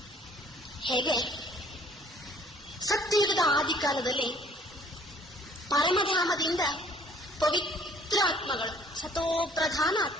ಹೇಗೆ ಸತ್ಯಯುಗದ ಆದಿಕಾಲದಲ್ಲಿ ಪರಮಧಾಮದಿಂದ ಪವಿತ್ರ ಆತ್ಮಗಳು, ಸತೋಪ್ರಧಾನ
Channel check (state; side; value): normal; both; correlation 0.57